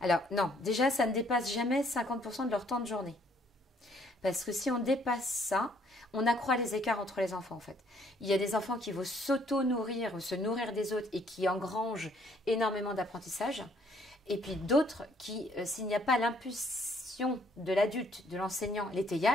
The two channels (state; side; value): normal; both; correlation 0.65